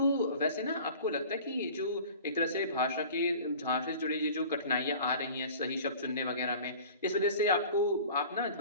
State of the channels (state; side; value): inverted; both; correlation -0.43